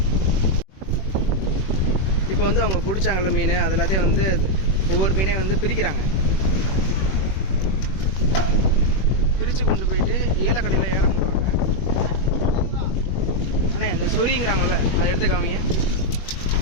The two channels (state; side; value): late; right; 21 ms